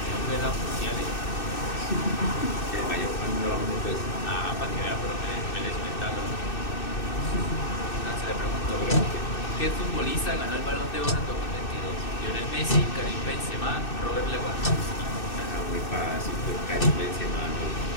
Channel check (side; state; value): right; late; 2.6 ms